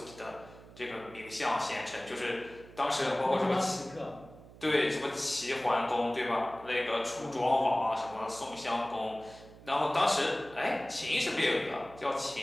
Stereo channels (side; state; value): right; noise; hum, 20 dB below the sound